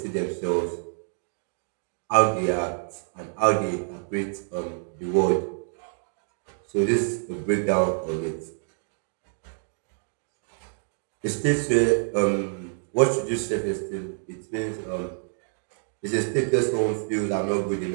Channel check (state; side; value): silent; left; 60 dB below the other